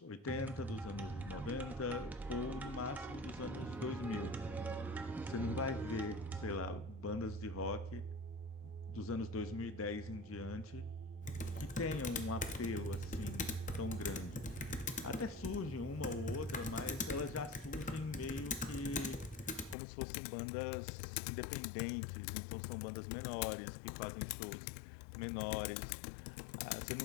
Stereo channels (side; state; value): right; drops out; at 19.8 s